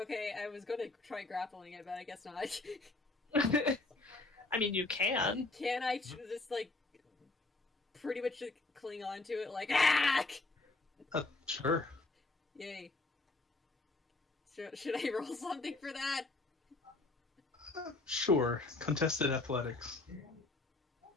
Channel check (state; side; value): quieter; right; 3.2 dB